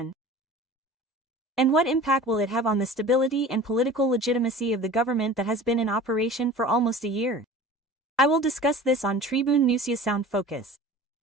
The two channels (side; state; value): both; normal; correlation 0.40